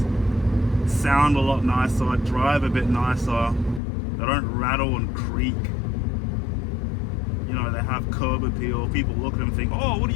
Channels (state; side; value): drops out; right; at 3.8 s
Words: sound a lot nicer, drive a bit nicer, they don't rattle and creak. You know, they have curb appeal. People look at them and think, oh, what